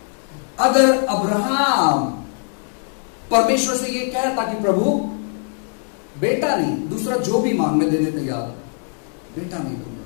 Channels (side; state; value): right; silent; 60 dB below the other